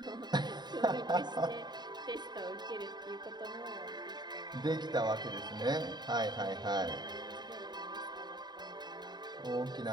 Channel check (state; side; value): late; left; 0.21 ms